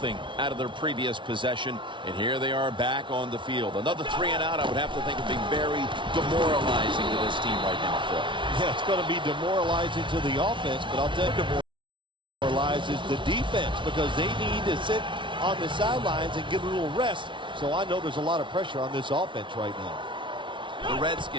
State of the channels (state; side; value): late; left; 0.24 ms